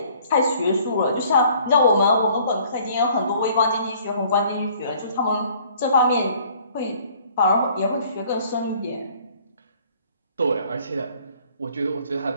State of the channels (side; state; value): both; inverted; correlation -0.57